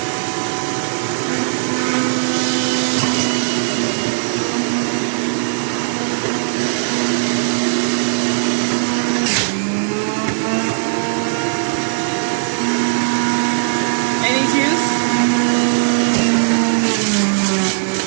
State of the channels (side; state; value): left; silent; digital silence